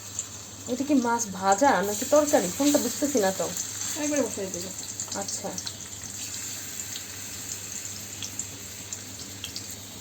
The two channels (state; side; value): identical; both; correlation 1.00